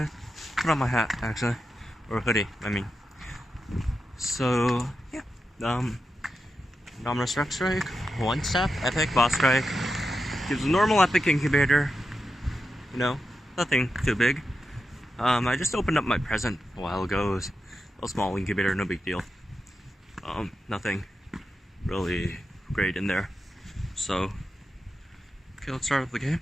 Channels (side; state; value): both; normal; correlation 0.89